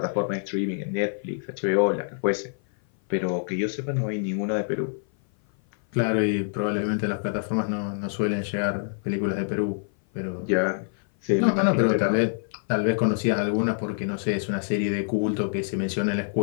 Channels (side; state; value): right; silent; 56 dB below the other